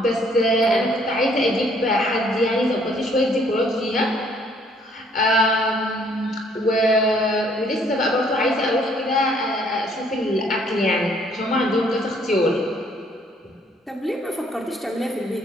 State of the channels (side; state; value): both; normal; correlation 0.63